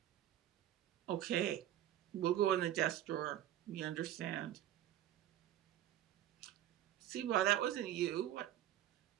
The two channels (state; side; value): quieter; left; 12.3 dB